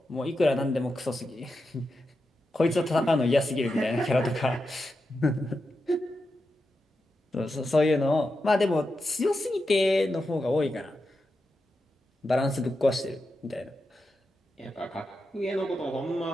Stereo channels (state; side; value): normal; both; correlation 0.88